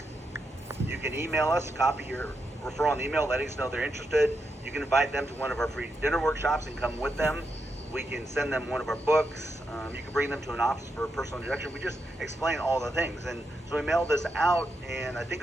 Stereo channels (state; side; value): normal; both; correlation 0.84